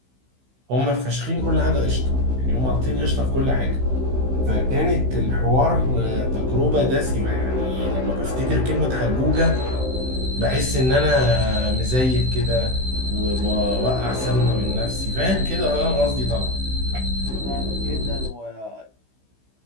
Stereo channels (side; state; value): left; late; 15 ms